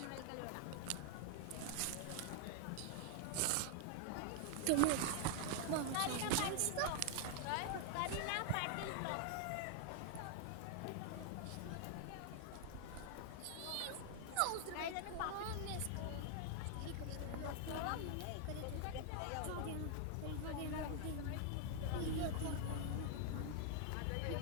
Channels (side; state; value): both; different; correlation 0.00